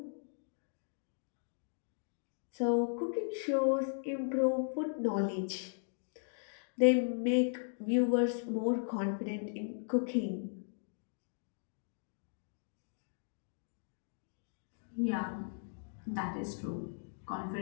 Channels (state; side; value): silent; right; digital silence